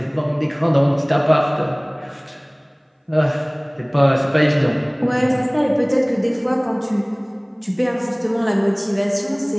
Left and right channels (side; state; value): both; identical; correlation 1.00